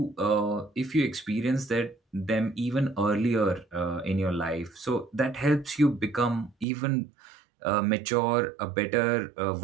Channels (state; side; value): drops out; left; at 6.7 s